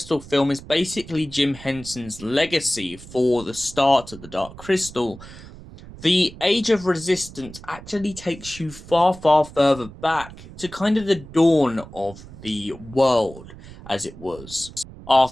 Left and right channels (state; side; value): noise; right; rumble, 17 dB below the sound